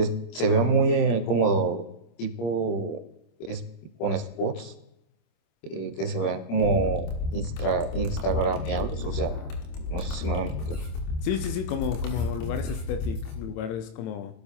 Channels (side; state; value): right; late; 26 ms